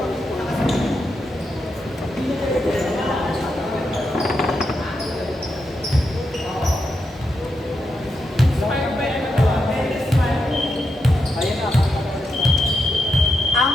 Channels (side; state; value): both; normal; correlation 0.84